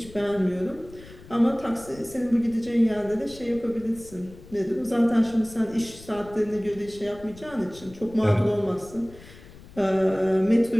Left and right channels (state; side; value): noise; left; rumble, 19 dB below the sound